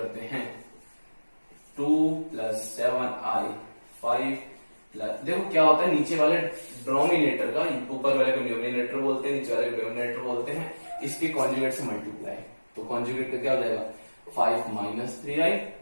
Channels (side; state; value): both; inverted; correlation -1.00